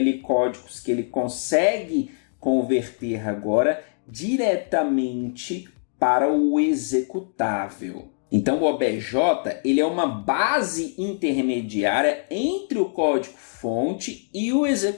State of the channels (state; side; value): silent; right; digital silence